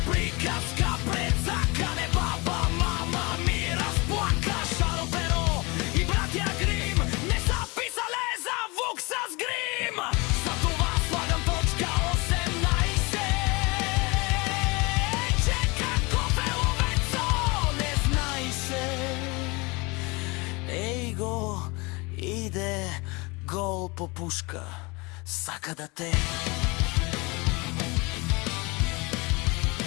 приказка пред закане, баба, мама ми разплака. Шаро Перо и братя Грим не са писале за вук с грим. Затова слагам точка 18. Чека кофе ловецо, не знай се. Ей го, иде гол по пушка, сака да те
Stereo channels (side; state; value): right; quieter; 26.3 dB